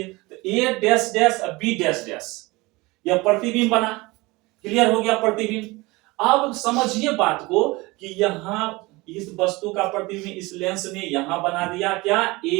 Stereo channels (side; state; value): left; quieter; 22.8 dB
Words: तो A dash dash B dash dash, यह प्रतिबिंब बना। क्लियर हो गया प्रतिबिंब। अब समझिए बात को कि यहां इस वस्तु का प्रतिबिंब इस लेंस ने यहां बना दिया क्या,